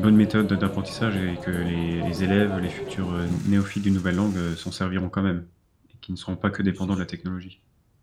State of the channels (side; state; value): both; identical; correlation 1.00